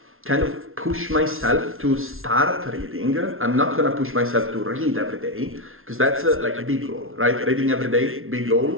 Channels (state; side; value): late; left; 0.61 ms